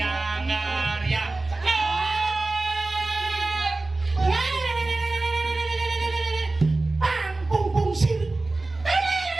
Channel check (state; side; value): quieter; left; 3.2 dB